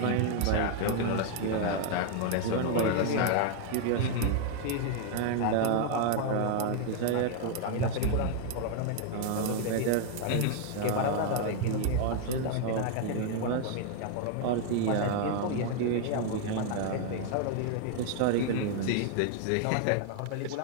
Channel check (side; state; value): both; different; correlation 0.00